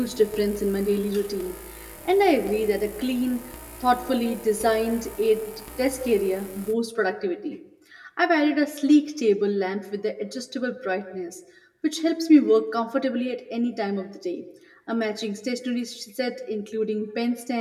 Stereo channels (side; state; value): both; identical; correlation 1.00